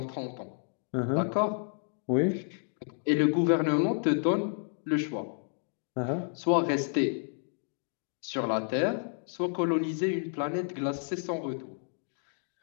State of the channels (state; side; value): silent; right; 57 dB below the other